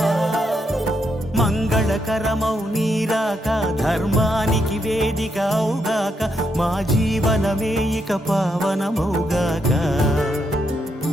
మంగళకరమౌ నీరాక ధర్మానికి వేదిక అవుగాక మా జీవనమే ఇక పావనమౌగాక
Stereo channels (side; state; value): both; normal; correlation 0.79